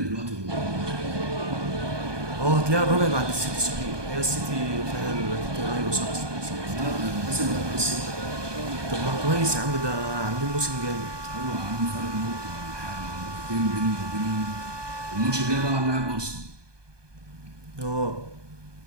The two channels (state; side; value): late; left; 1.2 ms